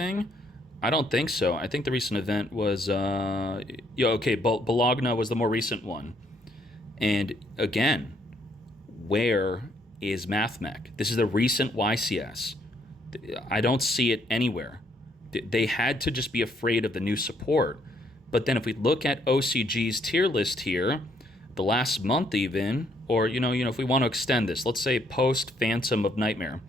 I don't think so. I think the recent event was... Bologna was the more recent one. And again, where is Mathmech? This is the recent YCS. I don't see it anywhere. They had to just be afraid of the new support. But then if we look at OCG's tier list here, the last month even, or, if we want to extend this, let's say post Phantom of Nightmare,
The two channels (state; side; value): normal; both; correlation 0.69